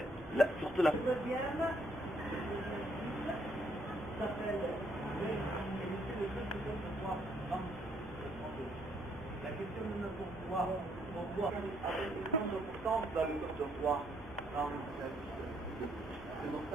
surtout la deuxième, s'appelle la question de notre pouvoir, avec une grande importance dans le corps de roi. C'est pour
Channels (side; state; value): both; normal; correlation 0.70